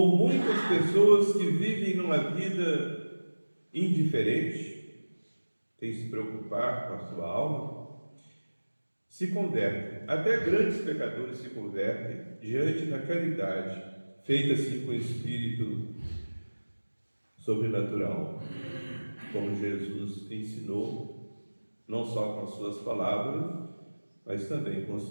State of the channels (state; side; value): inverted; both; correlation -1.00